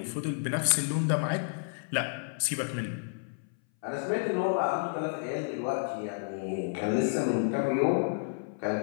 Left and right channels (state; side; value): silent; right; 57 dB below the other